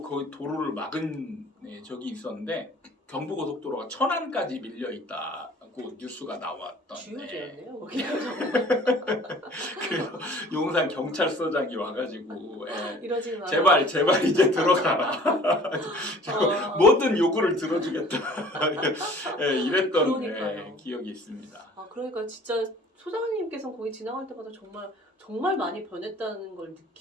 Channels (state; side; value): normal; both; correlation 0.50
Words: 그 도로를 막은 적이 있었는데 경부 고속도로가 천안까지 밀려 있다고 뉴스가 나왔던. 주요지였네요. 그래서 용산 경찰서장이 와가지고 이러지 마. 제발 이제 들어가라. 모든 요구를 들어주겠다. 이랬던 기억이 있습니다. 그러니까 진짜 소장님께서 거기 지나갈 때마다 정말 많이 변했다는 걸